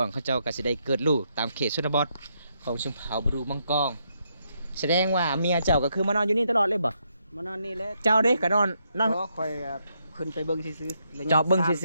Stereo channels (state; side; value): inverted; both; correlation -0.78